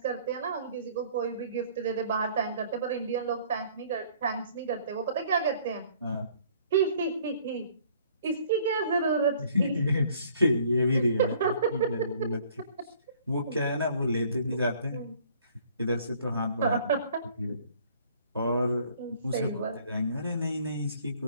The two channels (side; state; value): both; inverted; correlation -0.57